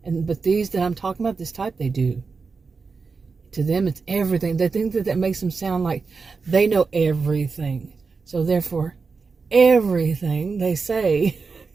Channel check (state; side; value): quieter; left; 4.7 dB